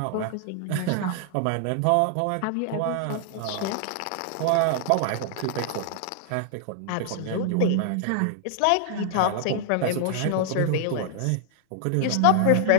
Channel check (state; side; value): different; both; correlation 0.00